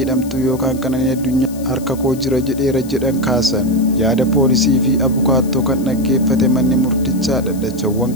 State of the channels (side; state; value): left; noise; hiss, 19 dB below the sound